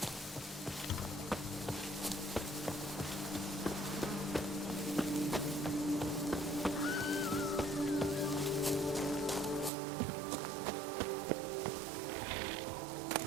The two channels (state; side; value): drops out; left; at 9.7 s